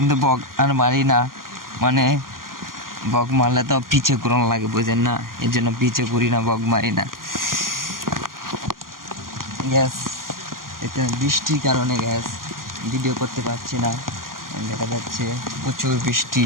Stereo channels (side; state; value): left; late; 0.91 ms